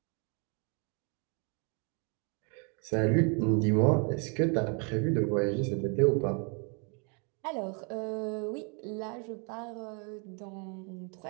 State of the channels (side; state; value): left; quieter; 36.2 dB